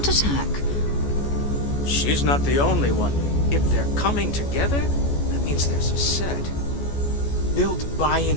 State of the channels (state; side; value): late; right; 14 ms